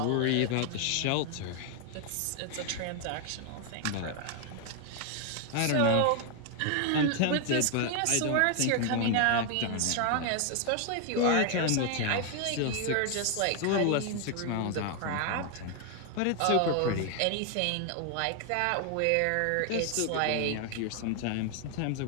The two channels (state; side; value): different; both; correlation 0.00